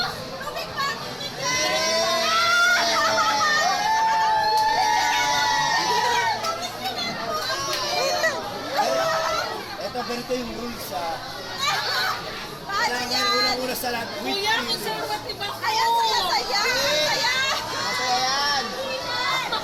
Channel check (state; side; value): identical; both; correlation 1.00